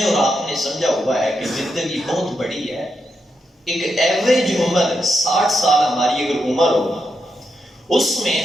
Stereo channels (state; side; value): normal; both; correlation 0.84